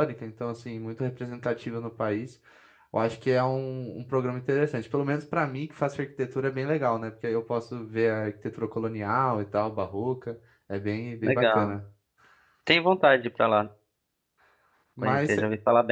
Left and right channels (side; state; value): both; identical; correlation 1.00